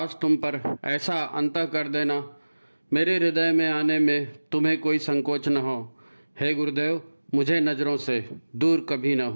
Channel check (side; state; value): both; inverted; correlation -1.00